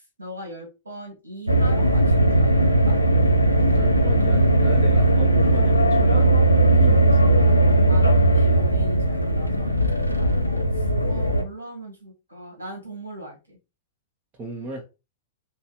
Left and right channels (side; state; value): both; inverted; correlation -0.71